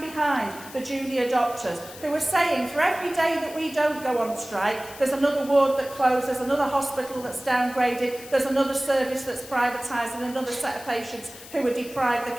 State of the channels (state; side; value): noise; left; hiss, 16 dB below the sound